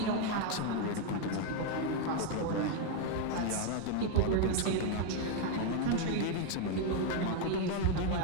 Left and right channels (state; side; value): different; both; correlation 0.01